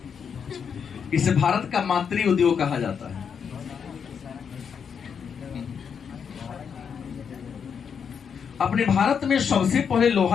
इसे भारत का मातृ उद्योग कहा जाता है। अपने भारत में सबसे पहले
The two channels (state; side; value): quieter; right; 6.9 dB